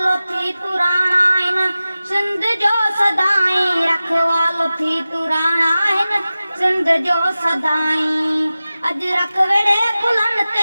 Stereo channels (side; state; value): both; inverted; correlation -0.96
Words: थी पुराणा इन सिंध जो सदाई रखवालो थी पुराणा इन सिंध जो सदाई अज रख वेड़े कुलन